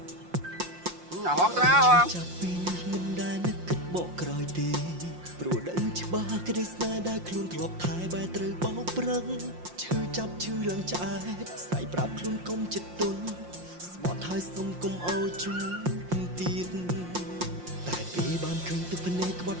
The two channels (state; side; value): late; left; 5.7 ms